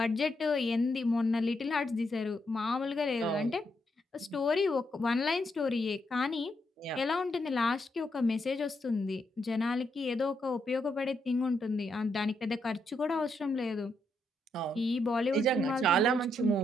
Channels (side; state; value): both; normal; correlation 0.79